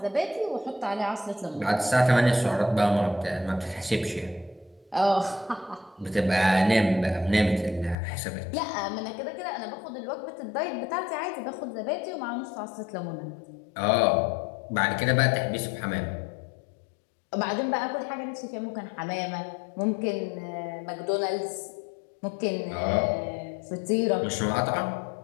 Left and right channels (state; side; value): drops out; right; at 8.0 s